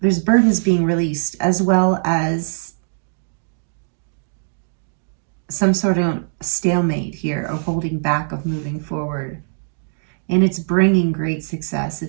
burdens being released, as well as some sort of stalemate here of holding back, of moving forward. And it's bringing great success.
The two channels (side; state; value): left; silent; digital silence